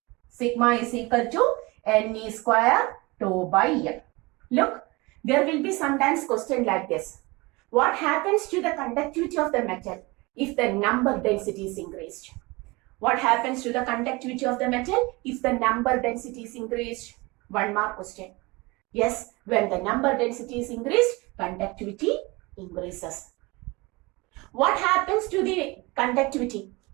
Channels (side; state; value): left; quieter; 24.1 dB